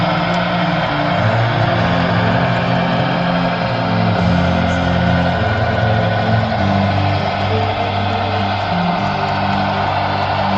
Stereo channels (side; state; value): both; identical; correlation 1.00